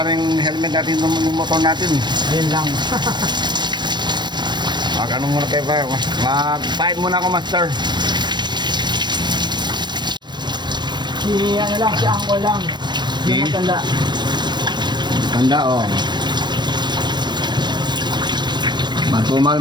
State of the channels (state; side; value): late; left; 0.22 ms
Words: na yung helmet natin ng motor natin. Yun lang. Ano muna kayo ba? Mag-fight muna ako, master. Si ano lang, si Angkol lang. Yung matanda. Tanda, oh. Matumal